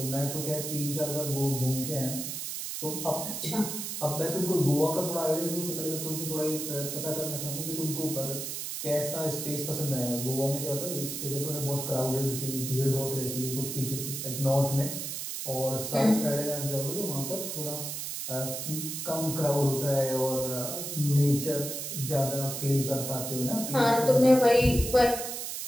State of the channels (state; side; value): noise; right; hiss, 5 dB below the sound